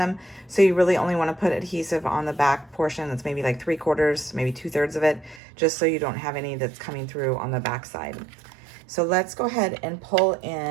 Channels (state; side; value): drops out; left; at 5.4 s